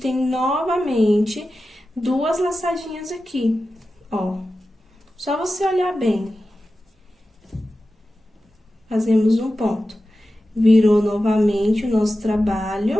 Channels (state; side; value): normal; both; correlation 0.93